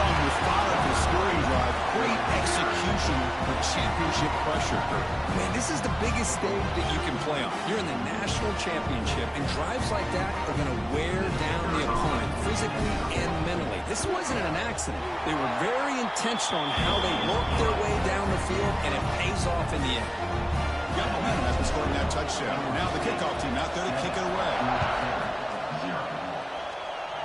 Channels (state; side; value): identical; both; correlation 1.00